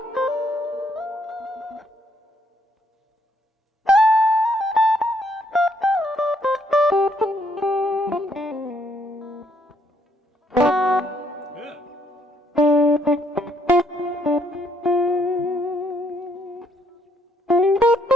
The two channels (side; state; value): both; normal; correlation 0.70